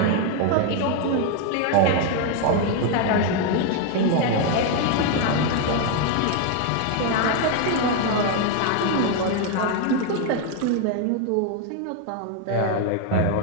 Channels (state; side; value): different; both; correlation 0.01